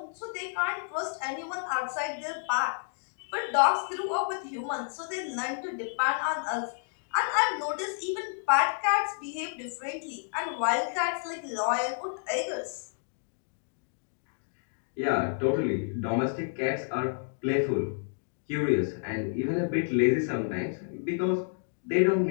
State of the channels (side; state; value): right; silent; digital silence